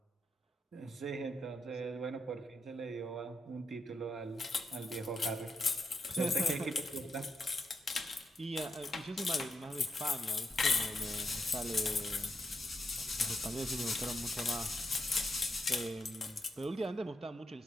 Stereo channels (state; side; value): normal; both; correlation 0.82